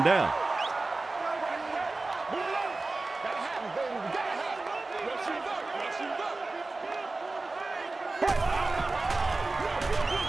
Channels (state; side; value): quieter; left; 3.4 dB